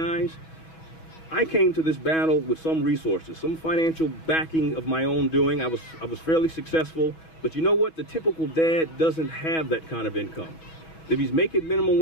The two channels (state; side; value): late; right; 6.2 ms